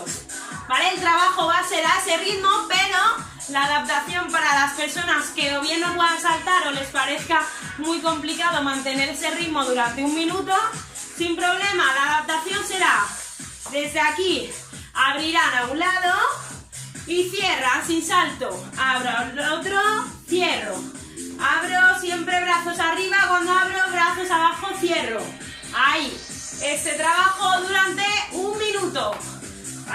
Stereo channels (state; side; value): identical; both; correlation 1.00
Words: ¿Vale? El trabajo va a ser a ese ritmo, pero la adaptación para las personas que o bien no puedan saltar o les parezca muy complicado mantener ese ritmo durante un minuto, sin problema, la adaptación será desde aquí, abrirán a un lado y cierran sin salto, abro al otro, cierro, abro siempre brazos arriba, cuando abro brazos abajo, cierro, ahí, este trabajo durante un minuto,